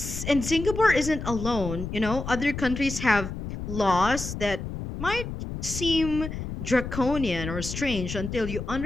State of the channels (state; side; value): noise; left; rumble, 7 dB below the sound